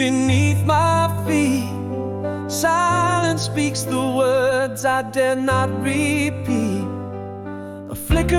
my feet. Silence speaks the words I dare not repeat. A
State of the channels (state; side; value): identical; both; correlation 1.00